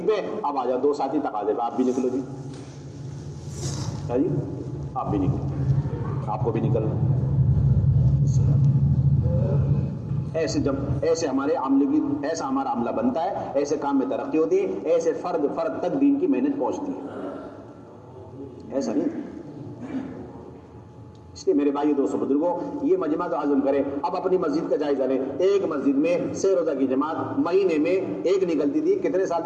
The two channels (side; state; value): both; identical; correlation 1.00